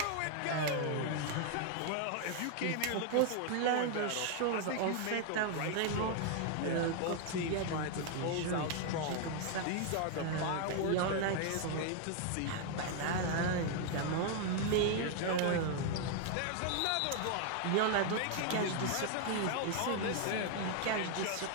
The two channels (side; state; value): both; different; correlation 0.00